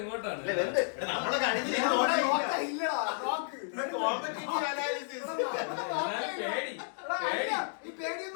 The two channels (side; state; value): right; silent; digital silence